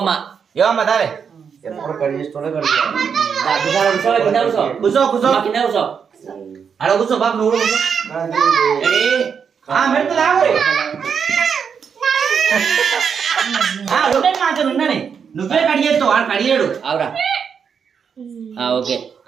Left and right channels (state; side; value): quieter; left; 6.7 dB